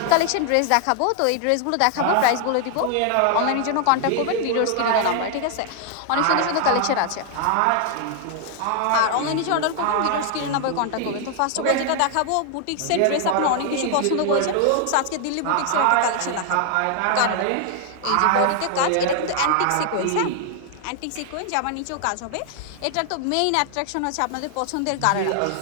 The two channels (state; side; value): different; both; correlation 0.00